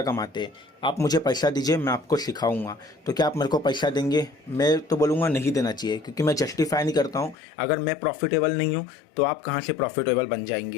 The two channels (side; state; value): right; drops out; at 7.4 s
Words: कमाते। आप मुझे पैसा दीजिए, मैं आपको सिखाऊंगा। तो क्या आप मेरे को पैसा देंगे? मैं तो बोलूँगा नहीं देना चाहिए, क्योंकि मैं जस्टिफाई नहीं करता हूँ। अगर मैं प्रॉफिटेबल नहीं हूँ तो आप कहाँ से प्रॉफिटेबल बन